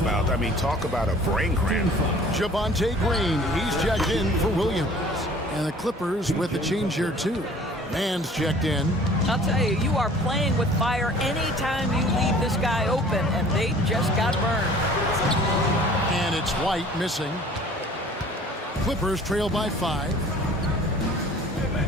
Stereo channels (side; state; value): both; normal; correlation 0.50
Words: I mean, talk about a brain cramp. Javonte Green, he's checked in for Williams. And the Clippers with a change here, too. Mann's checked in. I'll tell you, you are playing with fire anytime you leave this guy open, and they just got burned. And it's White missing. Clippers trail by 5.